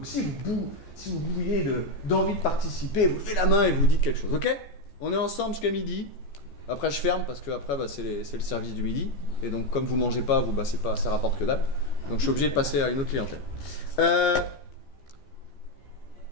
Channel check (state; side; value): late; right; 14 ms